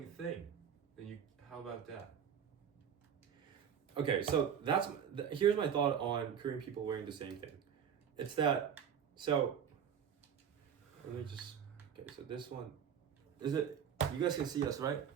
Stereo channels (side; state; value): left; quieter; 8.1 dB